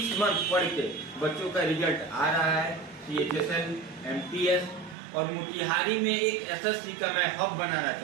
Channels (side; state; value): left; drops out; at 5.0 s